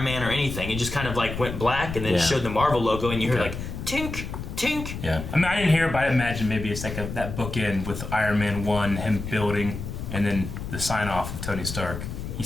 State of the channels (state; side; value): noise; left; rumble, 7 dB below the sound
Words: Man or anything. It just kind of like went black and then Yeah. showed the Marvel logo and you heard Okay. like tink tink. Yeah. I mean, I didn't hear it, but I imagine maybe it's like that bookend with Iron Man 1, him building, and then the sign off of Tony Stark. He's